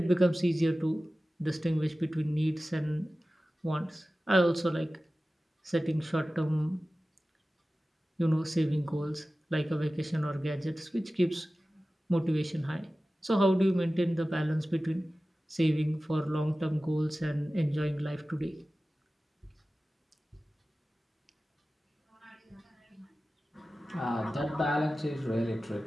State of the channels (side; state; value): both; normal; correlation 0.96